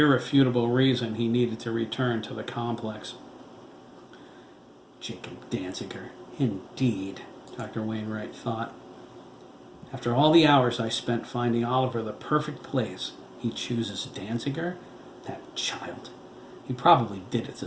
reason he needed to return to the complex. Jacob Danziger, indeed, Dr. Wainwright thought. After all the hours I spent finding Oliver the perfect place, he chooses Danziger? That child. He probably did it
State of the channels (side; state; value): both; identical; correlation 1.00